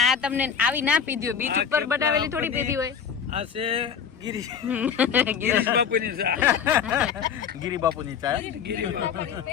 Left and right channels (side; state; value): right; quieter; 7.3 dB